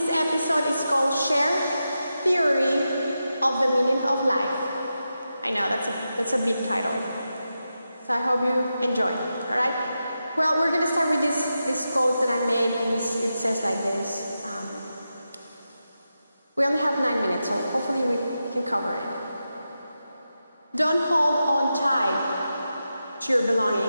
episode is called Sher Theory of the Meaning of Life. I know, that's a big title, so I hope you enjoy, alright? Well, we're going to start with this quote that I made, and it says like this. We only have 9 minutes, so hopefully we can cover it. Don't hold on tight to your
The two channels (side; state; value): both; inverted; correlation -0.90